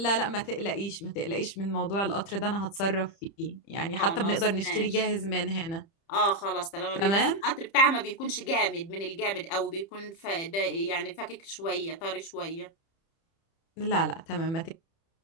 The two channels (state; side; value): late; right; 30 ms